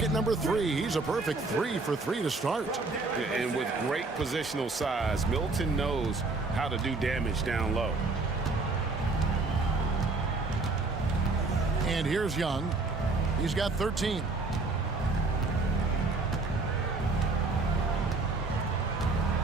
number 3. He's a perfect 3 for 3 to start. And with great positional size, Middleton knows how to do damage down low. And here's Young. He's got 13.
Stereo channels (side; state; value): left; quieter; 3.6 dB